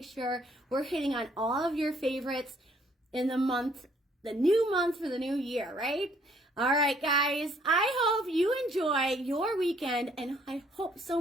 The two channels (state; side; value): normal; both; correlation 0.64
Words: sure we're hitting on all of your favorites in the new month for the new year, right? All right, guys, I hope you enjoy your weekend, and I hope so